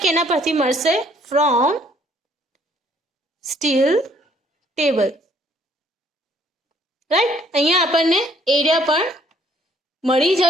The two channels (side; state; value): both; normal; correlation 0.63